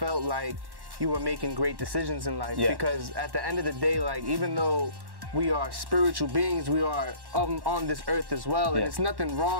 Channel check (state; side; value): late; left; 1.1 ms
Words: like you were making great decisions in life. Because at the end of the day, like, even though we are spiritual beings, we are on this earth as well, and it's nothing